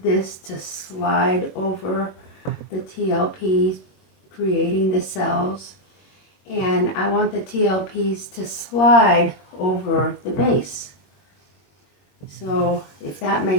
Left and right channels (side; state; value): right; late; 21 ms